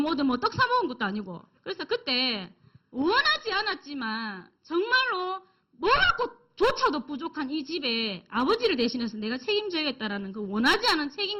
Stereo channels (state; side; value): identical; both; correlation 1.00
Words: 떡 사먹은 것도 아니고. 그래서 그때 원하지 않았지만 정말로 뭐라고 조차도 부족한 이 집에 아버지를 대신해서 내가 책임져야겠다라는 그 원하지 않은